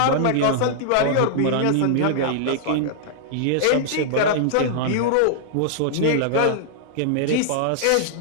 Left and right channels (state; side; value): different; both; correlation -0.01